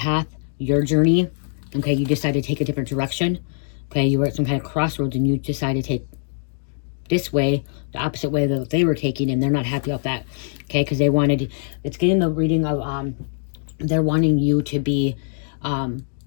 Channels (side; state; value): right; silent; digital silence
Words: your journey, okay? You decided to take a different direction, okay? You were at some kind of crossroads and you decided to take this way, the opposite way that they were taking, and they're not happy about that, okay? Because they wanted, it's getting the reading of, they're wanting you to be